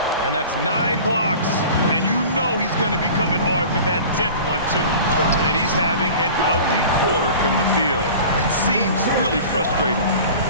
And that's 9 blocks. And you know he's going to be coming hard for that 10th one, too. And he's having an ugly quarter from the field. It seems really frustrating.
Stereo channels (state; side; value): inverted; both; correlation -0.40